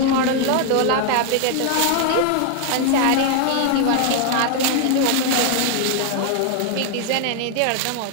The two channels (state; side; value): different; both; correlation 0.00